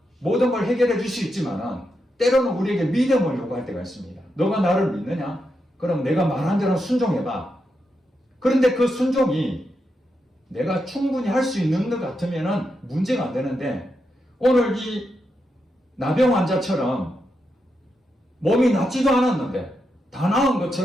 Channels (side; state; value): both; normal; correlation 0.85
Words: 모든 걸 해결해 줄 수 있지만은 때로는 우리에게 믿음을 요구할 때가 있습니다. 너가 나를 믿느냐? 그럼 내가 말한 대로 순종해봐. 그런데 그 순종이 내가 충분히 할 수 있는 것 같으면은 문제가 안 되는데, 오늘 이 나병 환자처럼 몸이 낫지도 않았는데 다 나은